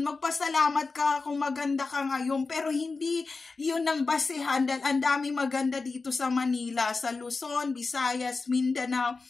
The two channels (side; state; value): right; quieter; 4.1 dB